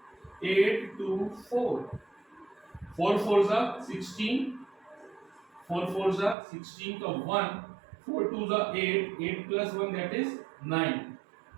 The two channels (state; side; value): drops out; left; at 6.4 s